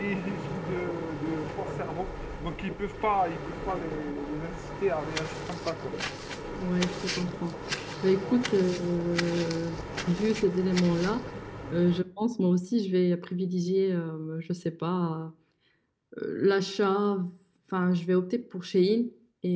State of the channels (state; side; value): identical; both; correlation 1.00